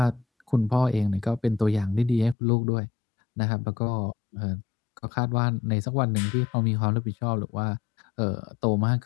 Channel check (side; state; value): right; drops out; at 2.4 s